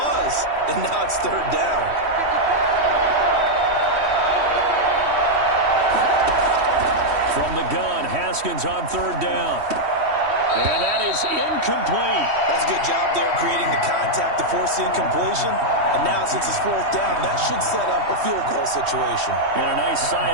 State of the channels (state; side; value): late; left; 3.1 ms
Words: and now it's 3rd down. From the gun, Haskins on 3rd down. And that is incomplete. That's a good job there creating the contact to force the incompletion. And now since it's 4th down, that should set up a field goal situation. And a nice sigh